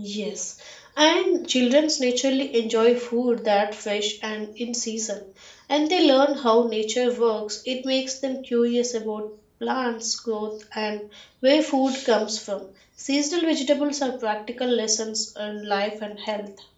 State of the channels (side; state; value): both; identical; correlation 1.00